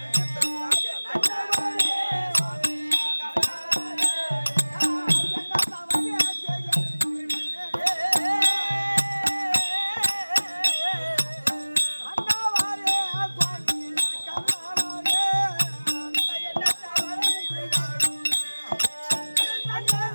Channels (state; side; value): inverted; both; correlation -1.00